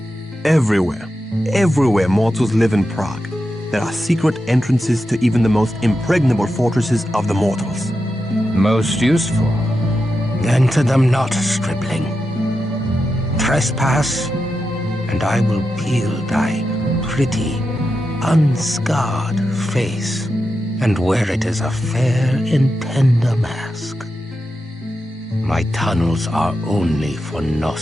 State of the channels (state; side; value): normal; both; correlation 0.89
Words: Everywhere. Everywhere mortals live in Prague. There are secret entrances to even the most impregnable fortresses of the mortals. Most useful. Enter them not, stripling. Trespass, and I will peel thy pretty, unscarred face and wear it as a fair and tender mask. My tunnels are only for